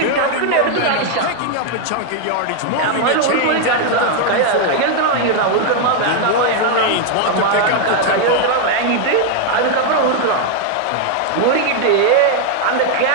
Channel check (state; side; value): different; both; correlation 0.00